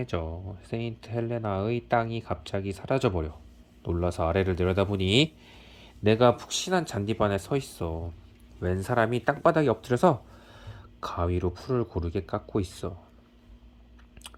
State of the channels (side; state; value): both; identical; correlation 1.00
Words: 세인트 헬레나의 땅이 갑자기 사라져버려. 놀라서 아래를 내려다보니 내가 푹신한 잔디반에 서 있어. 웬 사람이 땅바닥에 엎드려서 가위로 풀을 고르게 깎고 있어.